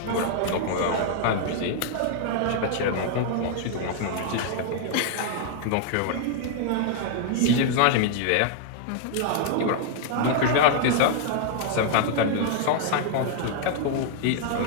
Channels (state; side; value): different; both; correlation -0.01